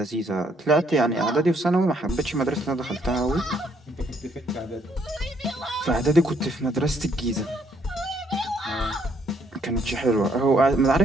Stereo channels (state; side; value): normal; both; correlation 0.69